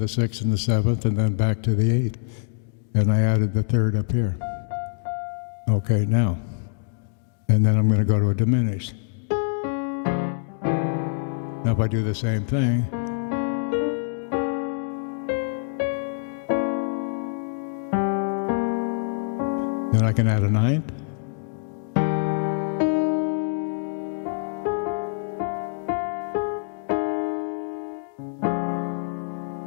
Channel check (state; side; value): silent; right; digital silence